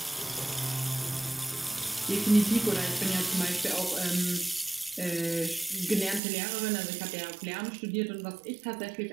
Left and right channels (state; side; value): drops out; left; at 6.2 s